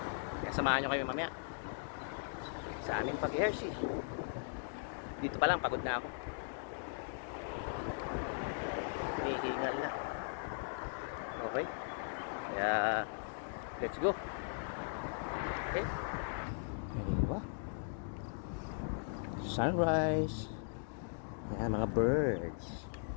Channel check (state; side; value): silent; right; digital silence